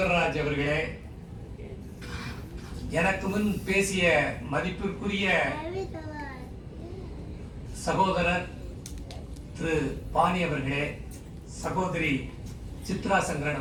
அவர்களே, எனக்கு முன் பேசிய மதிப்பிற்குரிய சகோதரர் திரு பாணி அவர்களே, சகோதரி சித்ரா சங்கரன்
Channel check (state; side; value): identical; both; correlation 1.00